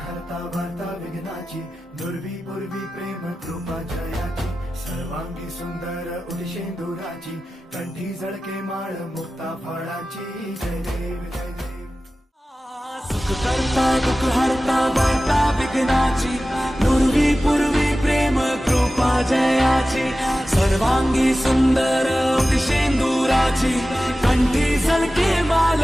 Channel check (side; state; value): both; normal; correlation 0.95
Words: हरता वार्ता विघ्नाची दुर्वी पूर्वी प्रेम कृपा जयाची सर्वांगी सुंदर उदिशेंदुराची कंठी झळके माळ मुक्ता फळाची जय देव जय देव। सुख करता दुःख हरता वार्ता विघ्नाची दुर्वी पूर्वी प्रेम कृपा जयाची सर्वांगी सुंदर उदिशेंदुराची कंठी झळके माळ